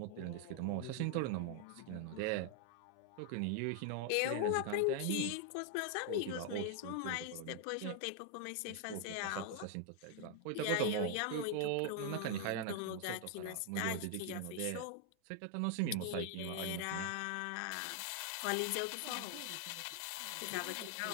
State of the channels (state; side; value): different; both; correlation 0.00